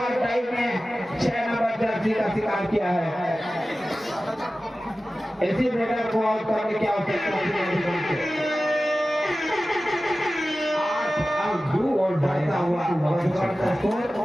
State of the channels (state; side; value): normal; both; correlation 0.95